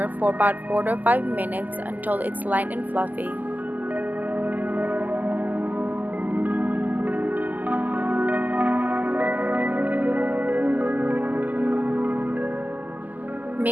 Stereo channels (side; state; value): left; late; 0.082 ms